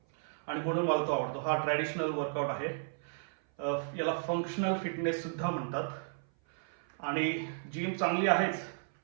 आणि म्हणून मला तो आवडतो. हा ट्रॅडिशनल वर्कआउट आहे. याला फंक्शनल फिटनेस सुद्धा म्हणतात. आणि जिम चांगली आहेच,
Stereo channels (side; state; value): left; silent; 55 dB below the other